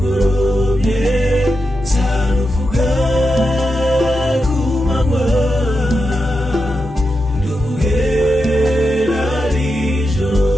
zaruvuga ku manywa nduhera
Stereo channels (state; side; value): normal; both; correlation 0.88